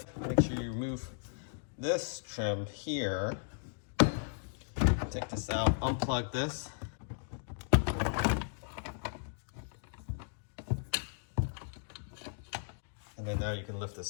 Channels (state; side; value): silent; right; digital silence